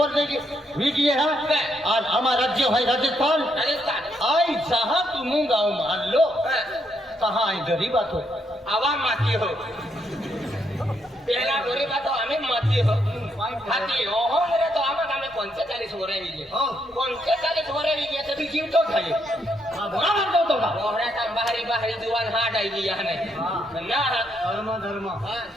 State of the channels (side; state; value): both; normal; correlation 0.76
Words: वीडियो है आज हमारा राज्य है राजस्थान आई जहाँ तुम गाँव मान लो कहाँ आई गरीब बात हो आवा माती हो पहला गरीब बात हमें माती हो हाथी ओहो मेरे तो आमा हमें 45 हो रहे हैं 45 हो रहे हैं तो भी जीव तो खाए बड़ा मानता तो का ओहरे का बाहरी बाहरी दुकान हाट आई गया है ना धर्म धर्म हां